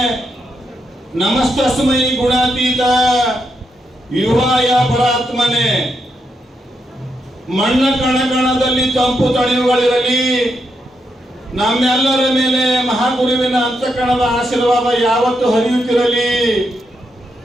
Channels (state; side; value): normal; both; correlation 0.82